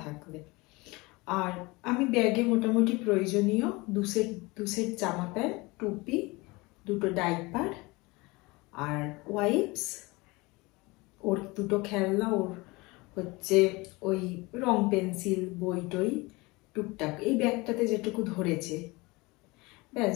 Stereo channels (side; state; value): right; quieter; 23.9 dB